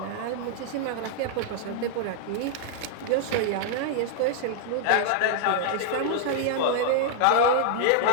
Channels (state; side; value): different; both; correlation -0.01